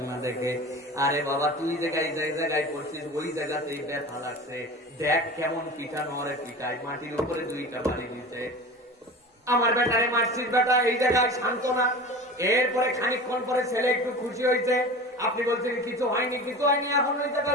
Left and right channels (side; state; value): both; normal; correlation 0.34